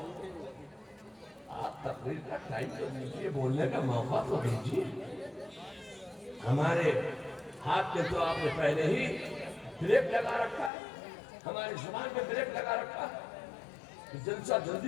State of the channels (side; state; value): right; drops out; at 10.7 s